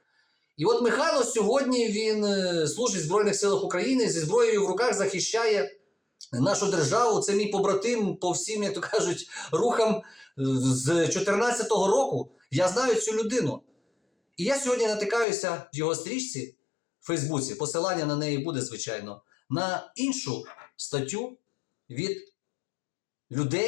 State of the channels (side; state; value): right; drops out; at 15.2 s